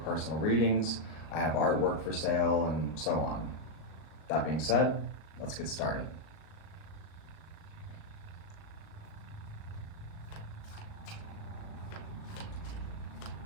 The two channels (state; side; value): late; right; 38 ms